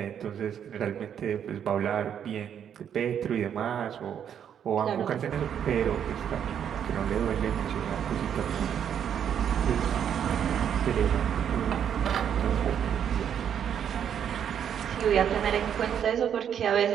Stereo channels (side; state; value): left; quieter; 8.8 dB